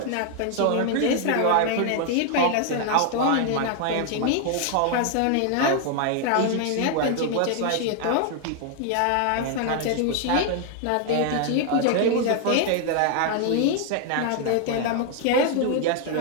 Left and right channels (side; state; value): both; different; correlation 0.00